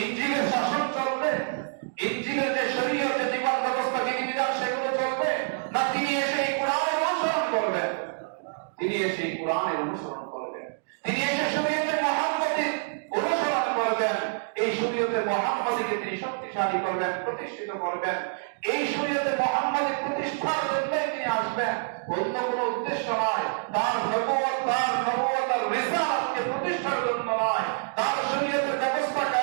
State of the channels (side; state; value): left; silent; digital silence